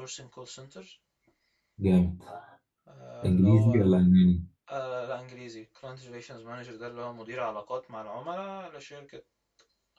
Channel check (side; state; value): both; identical; correlation 1.00